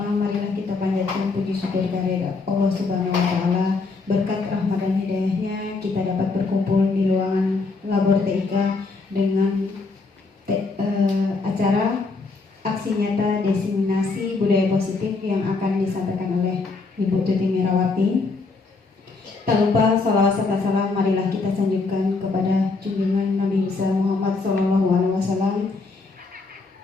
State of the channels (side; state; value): right; quieter; 4.0 dB